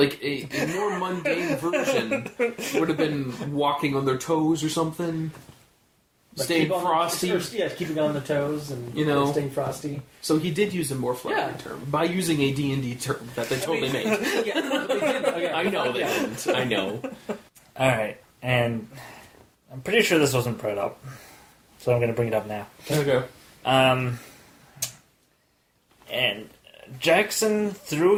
a more mundane version would have been walking on their toes or something. Like staying frosty. Keeping on the toes and staying frosty. So he did use a more flowery term by using a D&D term that they totally made. Yeah, they did. Okay. I know they didn't. I know. Alright, and I'm pretty sure this wasn't brought up, so I'm going to bring it up now. Okay. And Jackson threw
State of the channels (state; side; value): identical; both; correlation 1.00